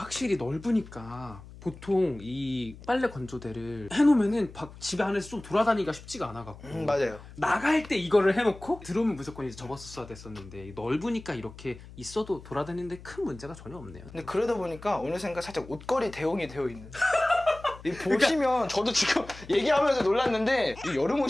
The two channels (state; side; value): noise; left; hum, 17 dB below the sound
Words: 넓으니까 보통 이 빨래 건조대를 해놓으면은 집에 안에서 좀 돌아다니기가 쉽지가 않아갖고 맞아요. 나갈 때 이거를 해놓고 들어오면 무조건 이제 접었어야 됐었는데 넓으니까 이렇게 있어도 돌아다니는데 큰 문제가 전혀 없네요. 근데 그러다 보니까 어느샌가 살짝 옷걸이 대용이 되어 있는. 이 보시면 저도 지금 얘기하면서 놀랐는데 이 여름